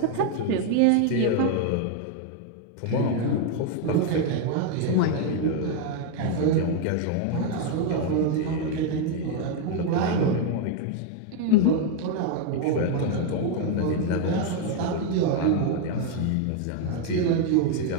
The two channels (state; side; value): different; both; correlation 0.01